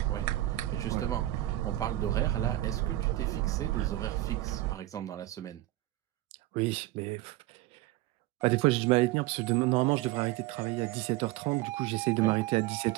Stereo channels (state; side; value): quieter; left; 16.5 dB